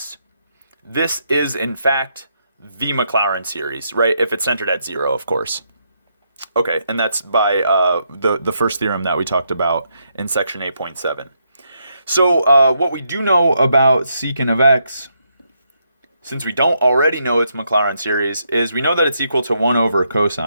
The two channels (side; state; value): both; inverted; correlation -0.78